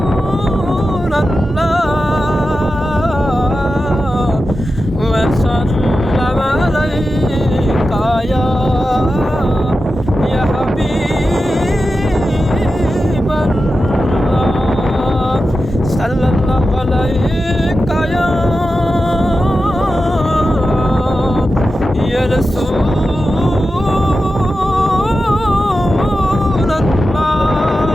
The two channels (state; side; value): normal; both; correlation 0.92